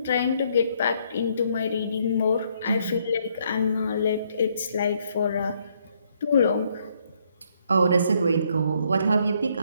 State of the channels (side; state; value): both; inverted; correlation -0.70